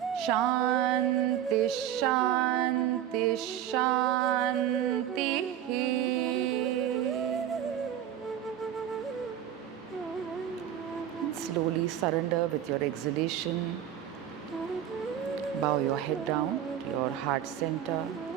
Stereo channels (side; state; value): left; quieter; 10.5 dB